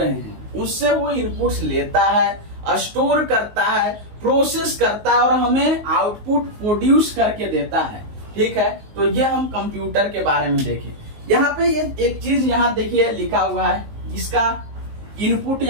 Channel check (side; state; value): left; late; 19 ms